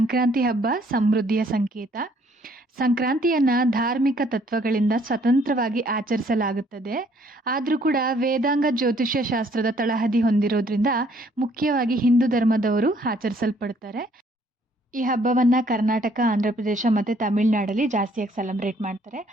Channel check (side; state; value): both; normal; correlation 0.63